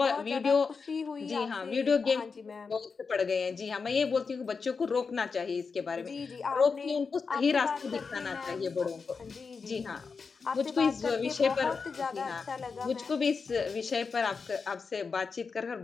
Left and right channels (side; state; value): right; quieter; 5.1 dB